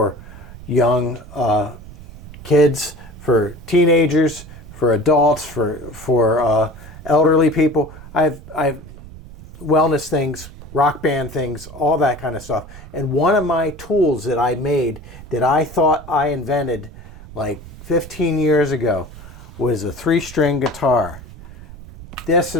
young kids, for teenagers, for adults, for elderly people. I've wellness things, rock band things, all that kind of stuff. And one of my tools that I made that I thought I invented like 15 years ago was a 3-string guitar. This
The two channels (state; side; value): noise; right; rumble, 16 dB below the sound